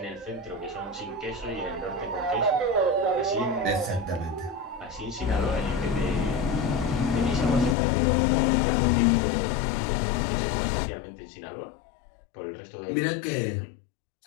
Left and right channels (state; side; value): drops out; right; at 7.8 s